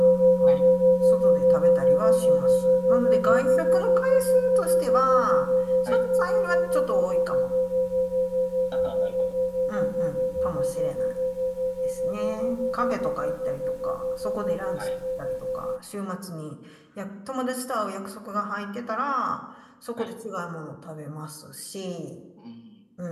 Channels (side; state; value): both; identical; correlation 1.00